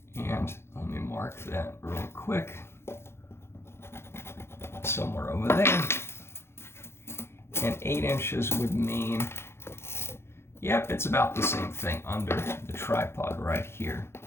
And let me mark that real quick. Somewhere over there. And 8 inches would mean, yep, it's about the same thing under the tripod right here.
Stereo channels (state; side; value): late; right; 0.12 ms